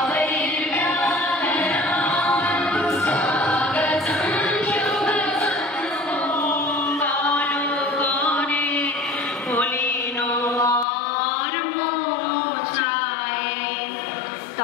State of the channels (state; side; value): drops out; right; at 10.9 s